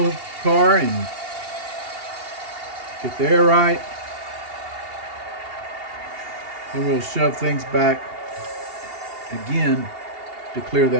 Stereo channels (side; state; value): left; late; 2.8 ms